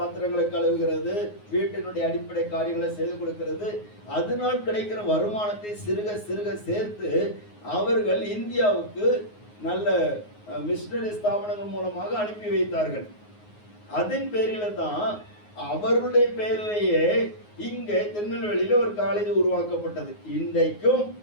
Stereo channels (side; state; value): right; late; 9.5 ms